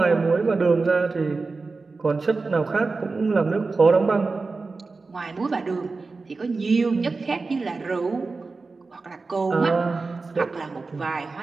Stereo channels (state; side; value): quieter; left; 4.0 dB